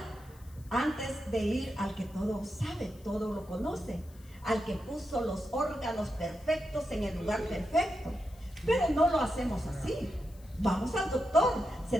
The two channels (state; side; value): noise; left; hiss, 26 dB below the sound